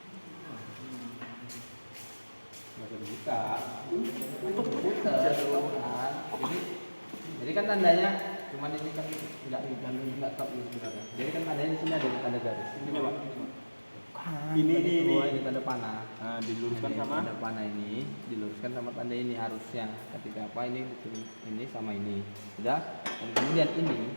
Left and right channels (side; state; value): both; inverted; correlation -1.00